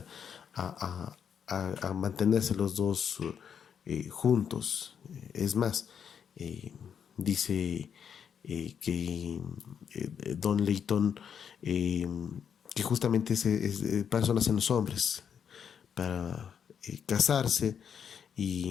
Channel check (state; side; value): quieter; right; 7.7 dB